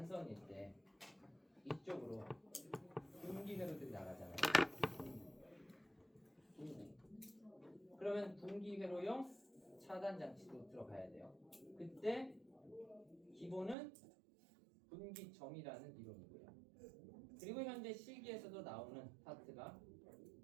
때 이쪽으로 분기회로들이 나가잖아요. 분기. 그러면 분기회로용 차단 장치도 들어가야 돼요. 그때 기본은 분기점이라는 이론이고요. 그리고 현재 실기에서도 나오는 파트가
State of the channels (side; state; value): left; drops out; at 13.8 s